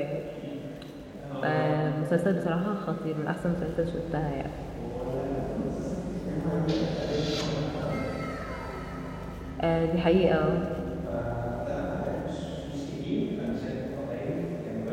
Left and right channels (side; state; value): both; identical; correlation 1.00